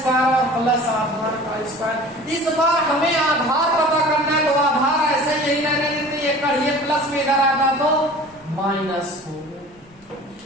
और प्लस आधार का स्क्वायर। इस बार हमें आधार पता करना है, तो आधार ऐसे यही रहने देते, ये कर्ण, ये प्लस में इधर आता तो माइनस हो गया।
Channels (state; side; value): noise; left; rumble, 30 dB below the sound